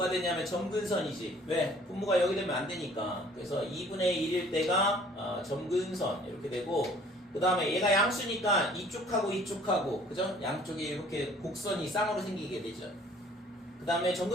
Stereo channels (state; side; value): normal; both; correlation 0.54